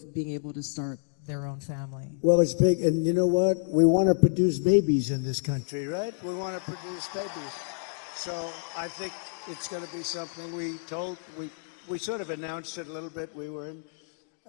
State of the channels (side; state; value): right; silent; digital silence